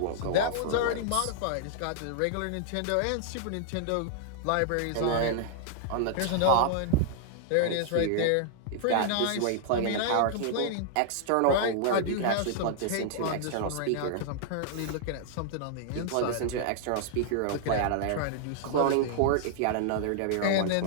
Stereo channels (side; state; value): both; different; correlation -0.01